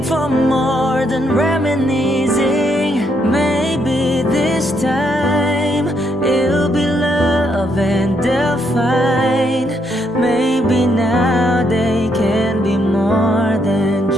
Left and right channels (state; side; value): normal; both; correlation 0.75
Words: for more than reminiscing. Maybe this time it'll be love and they'll find